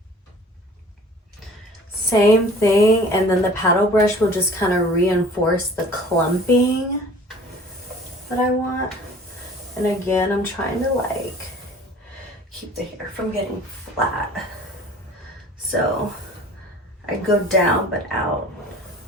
Same thing, and then the paddle brush will just kind of reinforce the clumping that I want. And again, I'm trying to like keep the hair from getting flat. So I go down but out,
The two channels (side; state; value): both; normal; correlation 0.47